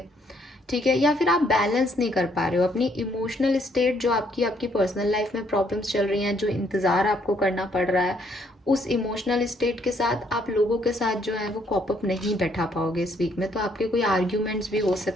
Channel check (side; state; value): both; normal; correlation 0.69